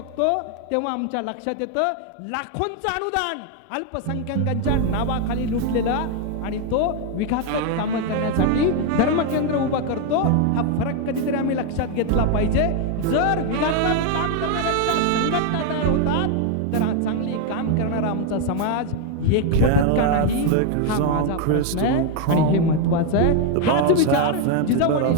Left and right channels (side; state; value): both; different; correlation 0.01